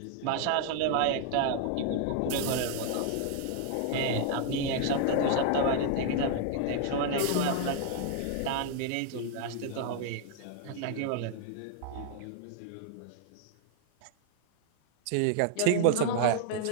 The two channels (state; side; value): different; both; correlation -0.01